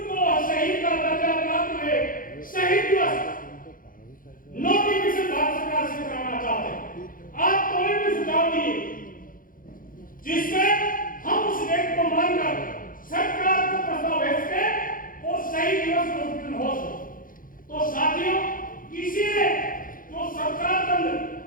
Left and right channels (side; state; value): right; late; 0.40 ms